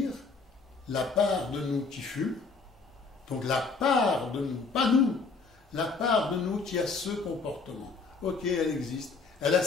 la part de nous qui fume, donc la part de nous, pas nous, la part de nous qui a ce comportement. Ok, elle existe, elle a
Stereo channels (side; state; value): right; quieter; 4.4 dB